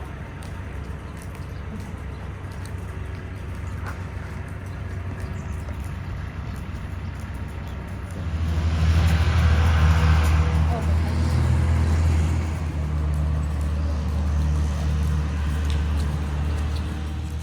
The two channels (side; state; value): both; identical; correlation 1.00